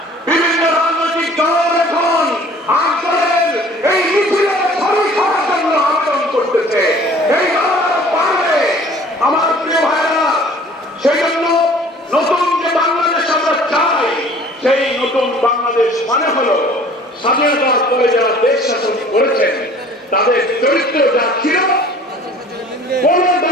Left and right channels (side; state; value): both; normal; correlation 0.50